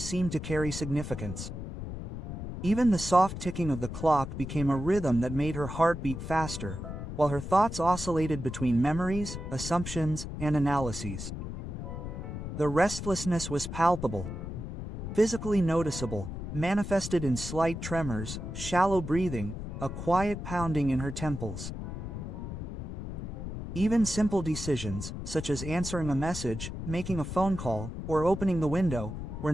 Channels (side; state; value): left; noise; rumble, 7 dB below the sound